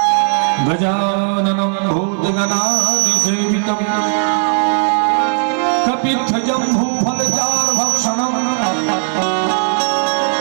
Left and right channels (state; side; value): silent; left; digital silence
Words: गजाननं भूतगणाधिसेवितं कपित्थजम्बूफलचारुभक्षणम्